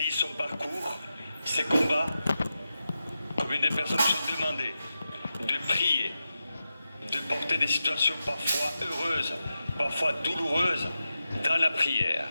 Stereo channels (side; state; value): both; inverted; correlation -0.90